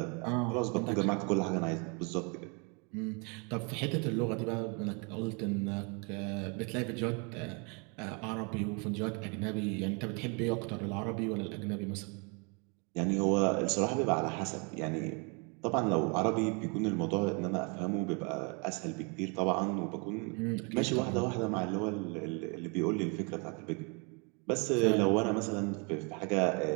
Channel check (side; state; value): left; quieter; 33.6 dB